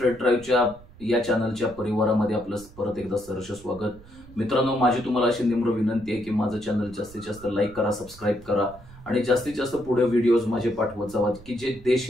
ड्राईव्हच्या या चॅनलच्या परिवारामध्ये आपलं परत एकदा सहर्ष स्वागत. मित्रांनो, माझी तुम्हाला अशी निम्र विनंती आहे की माझं चॅनल जास्तीत जास्त लाईक करा, सबस्क्राईब करा आणि जास्तीत जास्त पुढे व्हिडिओज माझे पाठवत जावा की जे देश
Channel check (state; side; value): noise; right; rumble, 21 dB below the sound